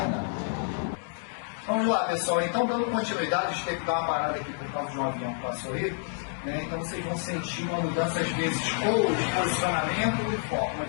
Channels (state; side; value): silent; right; digital silence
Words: Vamos lá, pessoal. Então, dando continuidade, a gente teve que dar uma parada aqui por causa de um avião que passou aí, né? Então, vocês vão sentir uma mudança, às vezes, ou de posicionamento ou de foco.